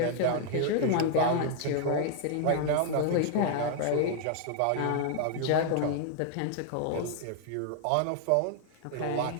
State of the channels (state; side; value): different; both; correlation 0.00